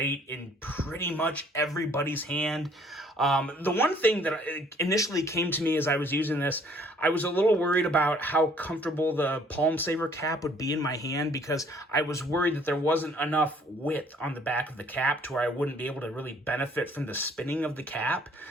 in pretty much everybody's hand. The one thing that initially came to me as I was using this, I was a little worried about how comfortable the palm saver cap would be in my hand, because I was worried that there wasn't enough width on the back of the cap to where I wouldn't be able to really benefit from the spinning of the cap.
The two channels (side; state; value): both; normal; correlation 0.60